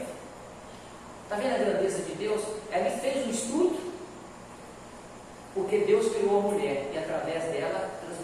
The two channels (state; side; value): identical; both; correlation 1.00